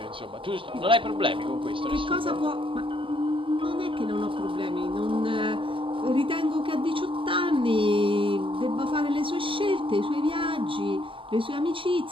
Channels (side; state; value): left; late; 0.25 ms